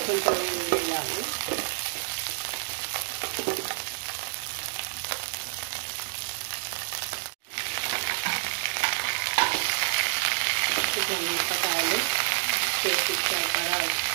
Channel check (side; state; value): left; silent; digital silence